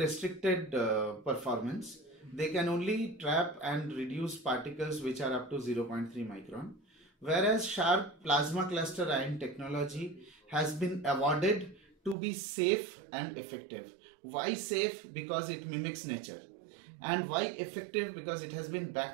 performance. They can only trap and reduce particles which are up to 0.3 micron. Whereas Sharp plasma cluster ion technology has been awarded to be safe and effective. Why safe? Because it mimics nature. And why effective? Because it has been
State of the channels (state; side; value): drops out; left; at 12.2 s